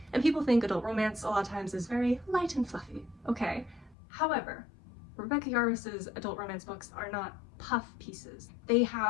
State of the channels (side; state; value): right; drops out; at 4.0 s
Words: and people think adult romance a lot of times is very light and fluffy. Okay. However, Rebecca Yarros's adult romance books are not puff pieces. They